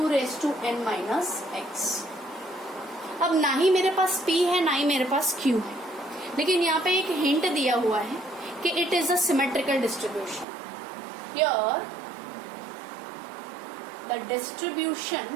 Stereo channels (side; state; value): left; drops out; at 10.5 s